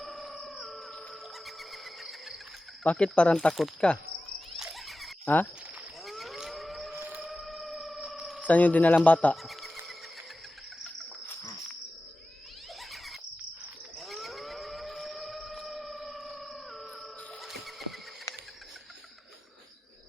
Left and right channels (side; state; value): both; normal; correlation 0.94